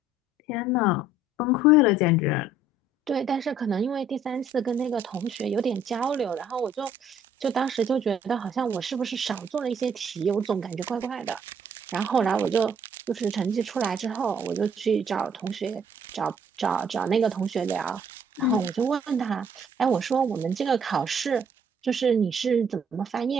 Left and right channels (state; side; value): normal; both; correlation 0.61